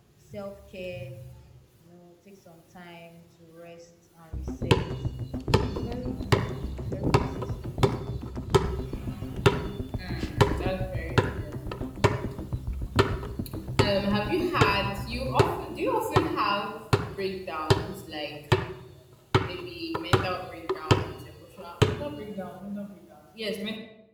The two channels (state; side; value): identical; both; correlation 1.00